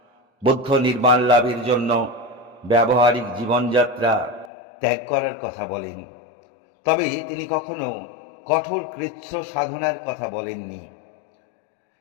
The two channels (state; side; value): drops out; right; at 4.5 s